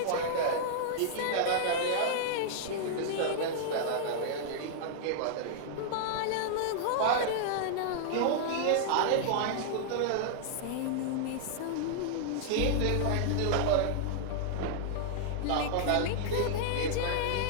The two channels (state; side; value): different; both; correlation -0.01